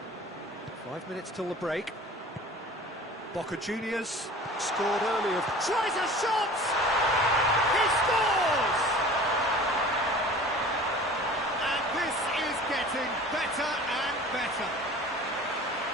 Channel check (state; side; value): normal; both; correlation 0.42